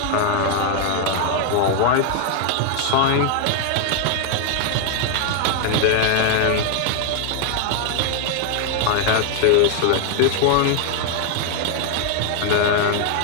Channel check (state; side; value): different; both; correlation 0.00